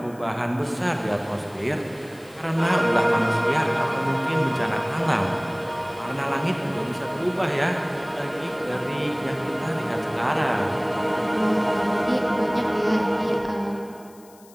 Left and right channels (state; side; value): noise; left; hiss, 26 dB below the sound